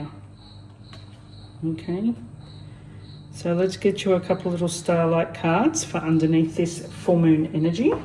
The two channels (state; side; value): identical; both; correlation 1.00